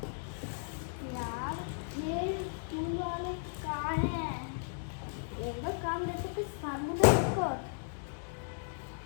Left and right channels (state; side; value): silent; right; digital silence